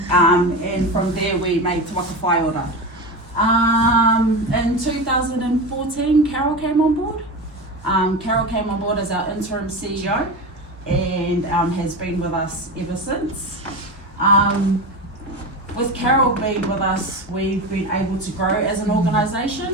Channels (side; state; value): both; normal; correlation 0.23